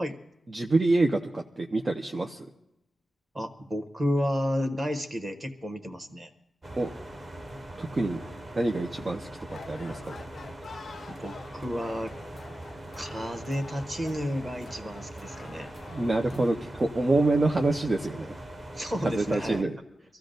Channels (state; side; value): normal; both; correlation 0.93